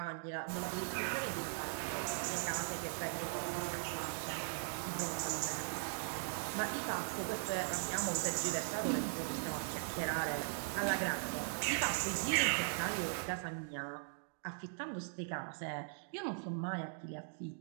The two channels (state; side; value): silent; left; digital silence